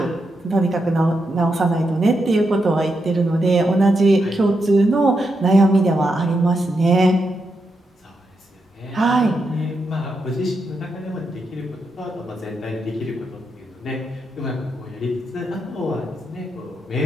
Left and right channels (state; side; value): normal; both; correlation 0.84